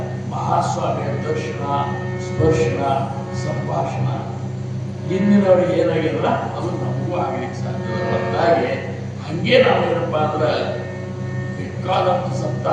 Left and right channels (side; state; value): both; identical; correlation 1.00